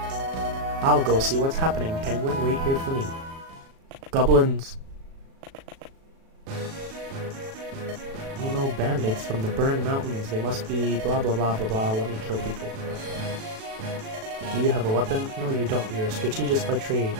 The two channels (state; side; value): late; left; 37 ms